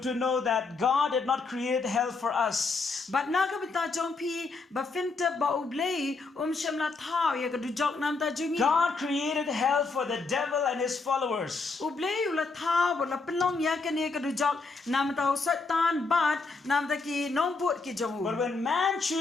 know that God did not create hell for us. But na ka bita jong pi ba finta ba ublei shamla thao ya ka du jok nam ta jungi. God created hell for the devil and his followers. Ublei ula thao la pelong ya ka ni ka du jok nam ta satan but nam ta ki nongbri ki jong. But when man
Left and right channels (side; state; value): right; quieter; 4.1 dB